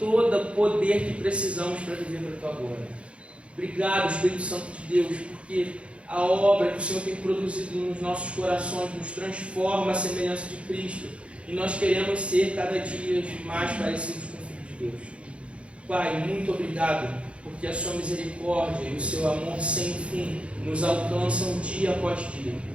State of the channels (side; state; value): left; late; 0.060 ms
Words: poder que precisamos para viver para a tua glória. Obrigado, Espírito Santo de Deus, porque a obra que o Senhor tem produzido nos nossos corações nos transforma à semelhança de Cristo, e nós queremos ser cada dia mais parecidos com o Filho de Deus. Pai, muito obrigado, porque a sua misericórdia e o seu amor sem fim nos alcançam dia após dia.